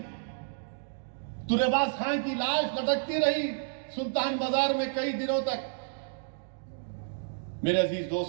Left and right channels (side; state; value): left; silent; digital silence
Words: ترے باز خان کی لاش لٹکتی رہی سلطان بازار میں کئی دنوں تک۔ میرے عزیز